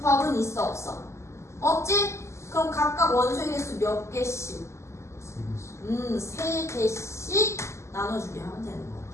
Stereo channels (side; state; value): right; late; 0.13 ms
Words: 있어 없어? 없지? 그럼 각각 원소의 개수 몇 개씩? 3개씩 나눠주게 하면 되는 거야.